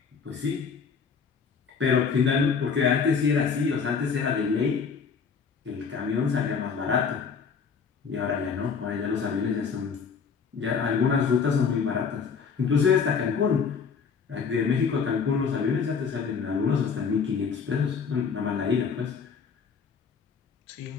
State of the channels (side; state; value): right; quieter; 5.9 dB